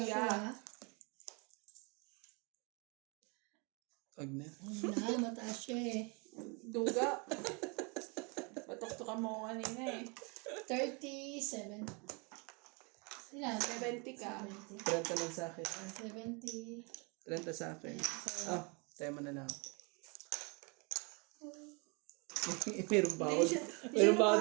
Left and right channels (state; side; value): quieter; left; 31.6 dB